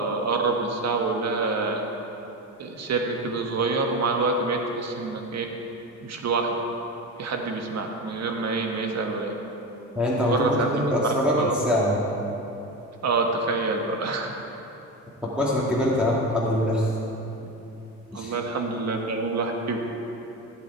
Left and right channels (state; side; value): normal; both; correlation 0.21